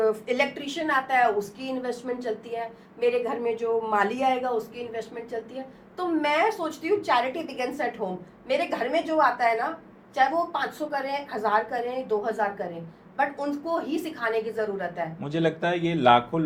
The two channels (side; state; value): both; identical; correlation 1.00